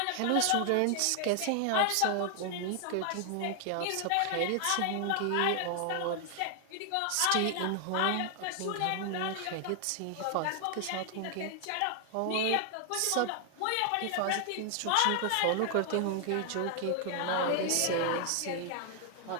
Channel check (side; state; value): both; different; correlation 0.00